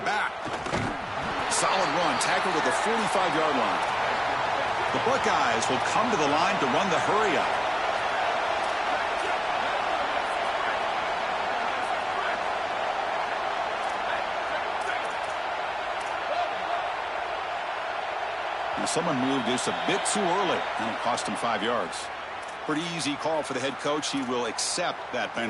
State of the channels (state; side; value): identical; both; correlation 1.00